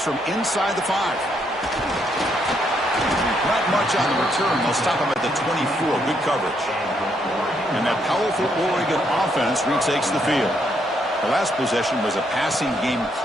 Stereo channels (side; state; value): both; normal; correlation 0.74